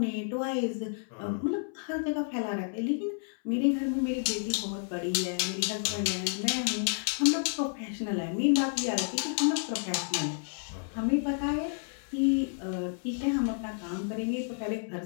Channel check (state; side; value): silent; right; 57 dB below the other